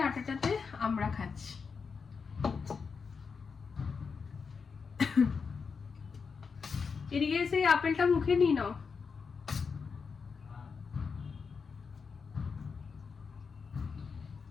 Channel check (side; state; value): right; quieter; 5.5 dB